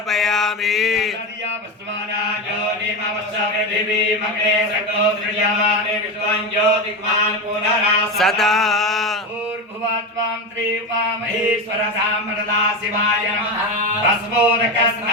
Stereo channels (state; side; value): normal; both; correlation 0.18